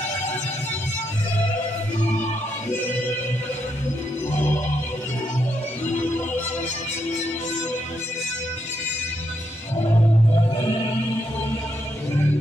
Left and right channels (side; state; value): both; normal; correlation 0.79